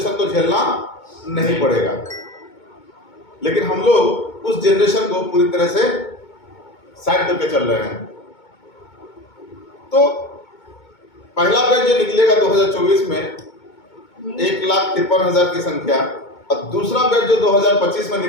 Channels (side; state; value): right; late; 2.2 ms